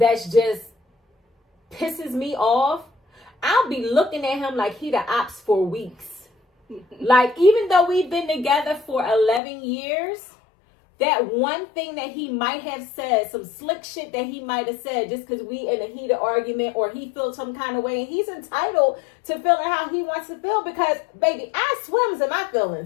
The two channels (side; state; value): right; drops out; at 9.4 s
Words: just pisses me off, I'll be looking at him like he the ops for weeks. Like, even though we've been together for 11 years, that one thing that he might have said, some slick shit that he might have said just because we in a heated argument or he feels some kind of way, and he's entitled to feeling how he wants to feel because, baby, I swims in my